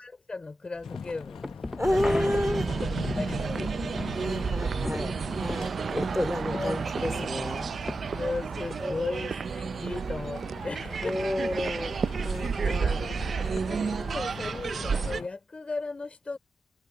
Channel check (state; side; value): normal; both; correlation 0.90